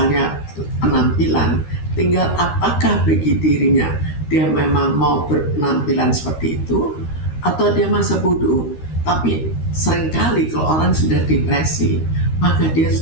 penampilan, tinggal apakah bagi dirinya dia memang mau berpenampilan seperti itu atau dia masa bodoh. Tapi seringkali kalau orang sudah depresi, maka dia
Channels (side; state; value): right; late; 13 ms